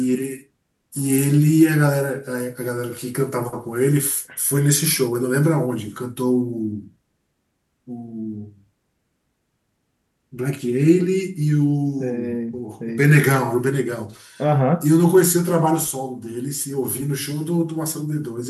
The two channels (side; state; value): both; identical; correlation 1.00